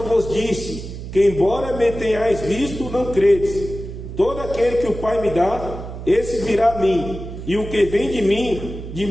vos disse, que embora me tenhais visto, não credes. Todo aquele que o Pai me dá, esse virá a mim, e o que vem de mim, de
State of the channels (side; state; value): right; noise; hum, 10 dB below the sound